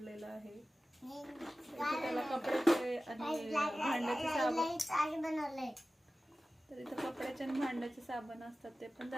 आहे. इथे त्याला कपड्याचे आणि भांड्याचे साबण बनवले. तर इथं कपड्याचे आणि भांड्याचे साबण असतात ते पण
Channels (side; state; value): both; normal; correlation 0.96